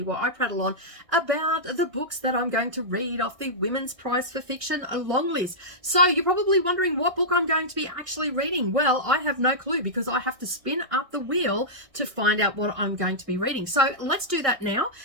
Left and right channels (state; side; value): late; left; 1.6 ms